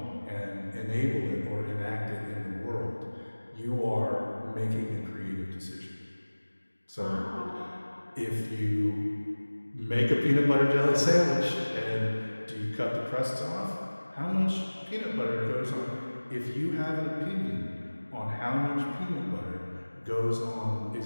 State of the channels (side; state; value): both; inverted; correlation -1.00